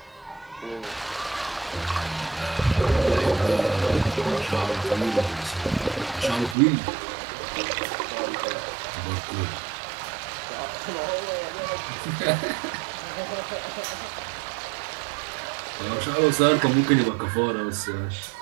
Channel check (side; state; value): left; drops out; at 6.6 s